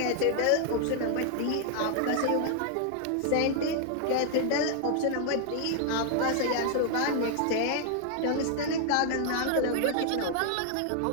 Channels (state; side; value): different; both; correlation 0.00